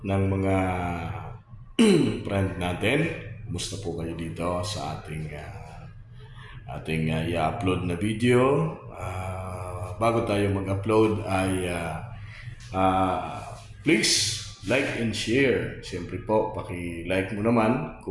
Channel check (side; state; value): both; identical; correlation 1.00